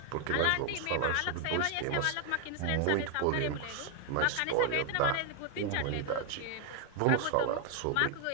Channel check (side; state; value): both; different; correlation 0.00